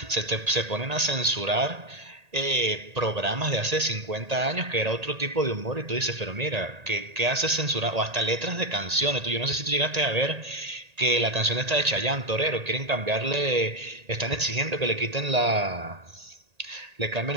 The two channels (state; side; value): late; left; 1.8 ms